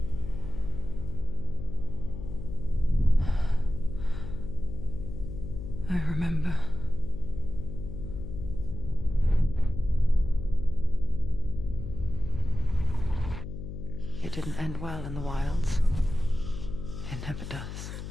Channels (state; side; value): noise; left; hum, 8 dB below the sound